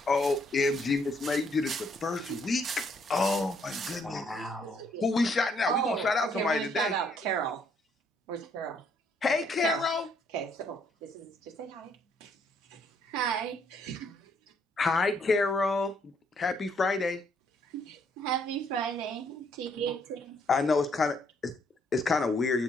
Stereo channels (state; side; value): normal; both; correlation 0.69